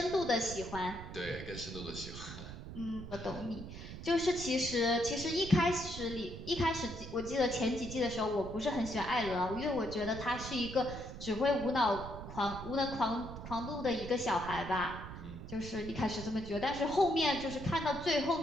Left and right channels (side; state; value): right; noise; rumble, 10 dB below the sound